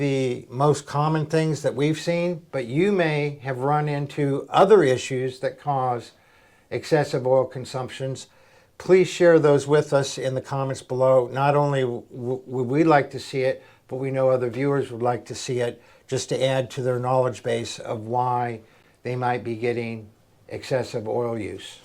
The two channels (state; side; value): identical; both; correlation 1.00